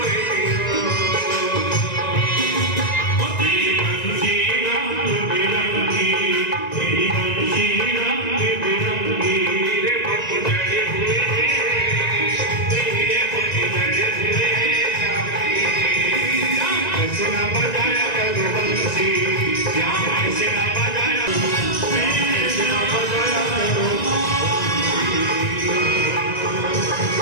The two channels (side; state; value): right; late; 1.9 ms